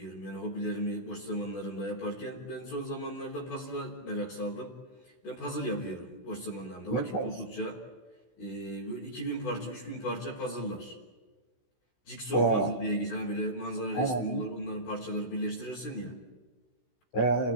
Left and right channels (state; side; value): late; right; 16 ms